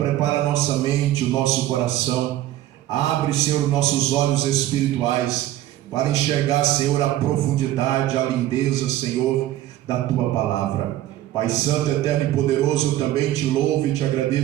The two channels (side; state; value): left; quieter; 13.7 dB